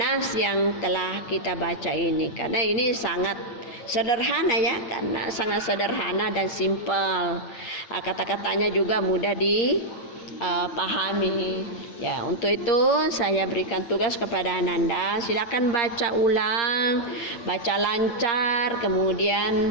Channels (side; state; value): right; late; 8.6 ms